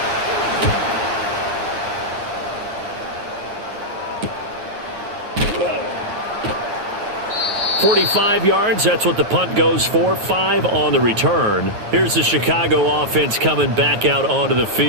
45 yards, that's what the punt goes for. 5 on the return. Here's the Chicago offense coming back out onto the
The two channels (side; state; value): left; late; 9.3 ms